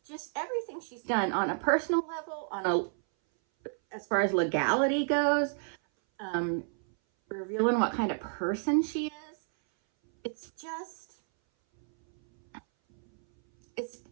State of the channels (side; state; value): left; silent; 57 dB below the other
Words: just everything she's done on a personal level, as far as legality goes, revealing what kind of person she is. It's just,